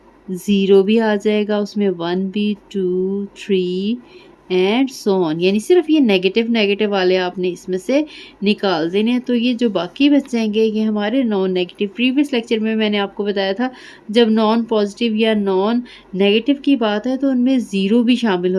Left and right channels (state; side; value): identical; both; correlation 1.00